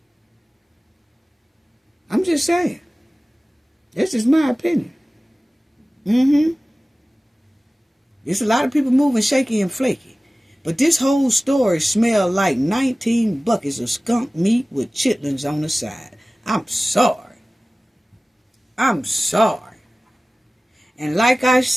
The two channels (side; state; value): both; normal; correlation 0.97